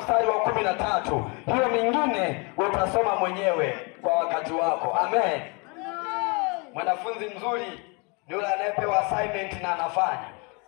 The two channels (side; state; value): right; quieter; 31.4 dB